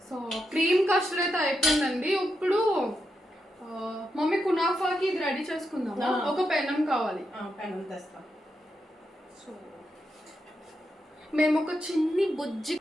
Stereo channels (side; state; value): both; normal; correlation 0.84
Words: సో క్రీమ్ కస్టర్డ్ అయితే అయిపోయిందండి. ఇప్పుడు మమ్మీ కునాఫాకి ఇది రెడీ చేసుకుందాం. ఒక పెనం కావాలి. పెనం తెస్తాం. సో మేము ఒక చిన్ని బుజ్జి